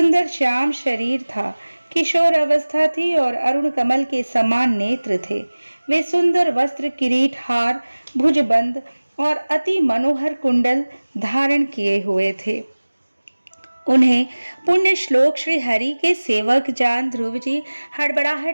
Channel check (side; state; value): both; inverted; correlation -1.00